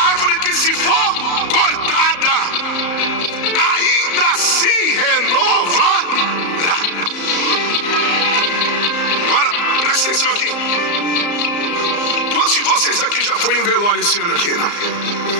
árvore que, se for cortada, ainda se renovará. Agora presta atenção aqui. Quantos de vocês aqui já foi em um velório esse ano aqui, não?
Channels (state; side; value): late; right; 34 ms